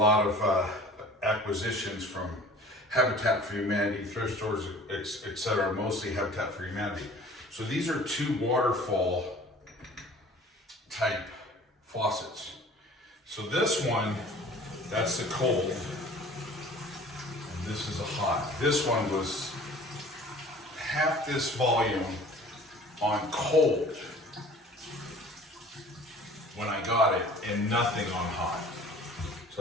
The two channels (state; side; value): normal; both; correlation 0.47